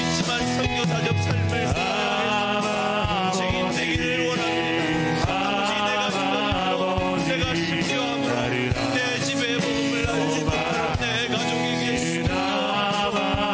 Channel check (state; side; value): identical; both; correlation 1.00